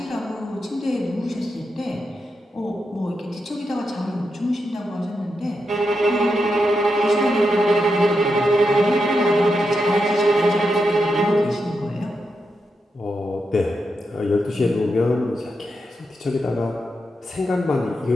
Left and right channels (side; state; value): both; normal; correlation 0.85